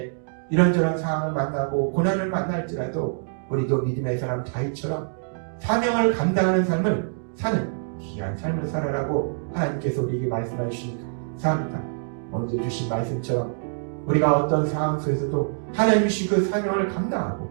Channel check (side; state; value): left; silent; digital silence